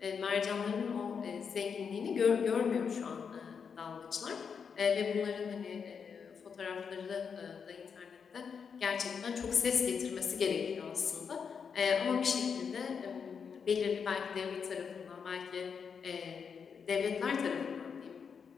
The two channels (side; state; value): right; quieter; 6.4 dB